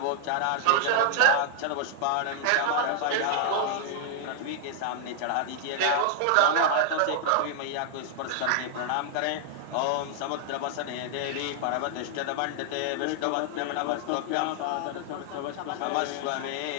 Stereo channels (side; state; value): both; different; correlation 0.00